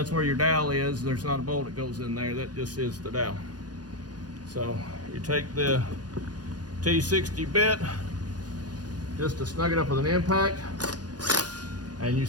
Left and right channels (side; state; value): left; late; 0.69 ms